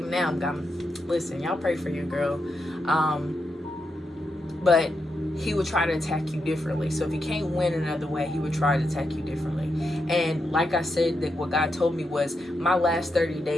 now listen, y'all pray for your girl. But he would try to attack you differently. So if he can't win another way, he would try to attack you differently. And like I said, that what God told me was my last 30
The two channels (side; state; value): both; normal; correlation 0.84